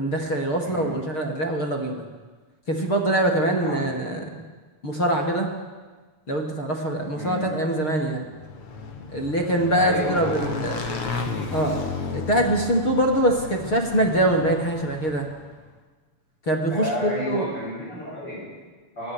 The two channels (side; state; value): right; late; 6.4 ms